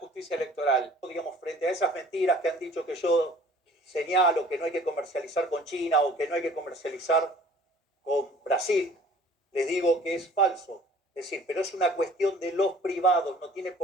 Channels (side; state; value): both; normal; correlation 0.51